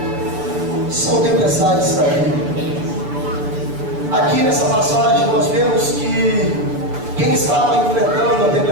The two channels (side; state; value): left; late; 6.9 ms